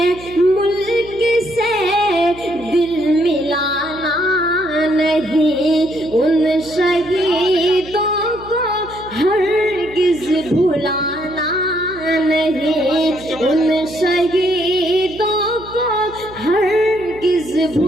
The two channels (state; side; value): noise; right; hum, 18 dB below the sound